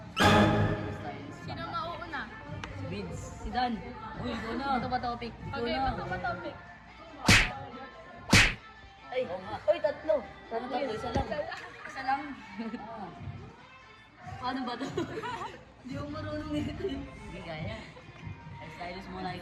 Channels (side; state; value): both; identical; correlation 1.00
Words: Sino mauuna? Si Vince. Si Dan. Uy, ikaw na. Ito ba topic? Okay, ito ba topic? Ay, uy, tatlo. Tatlo, isa lang. Isa lang. Paano ba ito? Hindi ako marunong nito. Hindi kaya. Ay, stylist muna